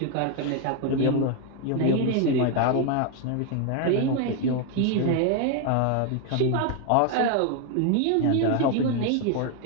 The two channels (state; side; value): different; both; correlation 0.01